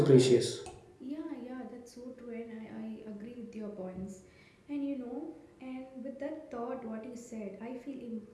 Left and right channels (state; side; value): identical; both; correlation 1.00